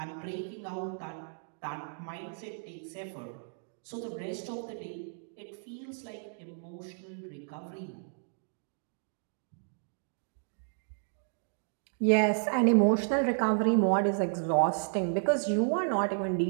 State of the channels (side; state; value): left; silent; digital silence